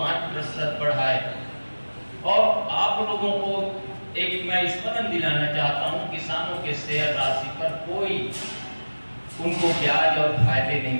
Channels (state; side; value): inverted; both; correlation -1.00